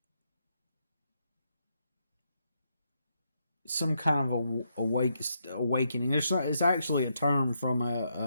some kind of awakening. It's actually a term from a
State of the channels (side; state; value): both; inverted; correlation -0.79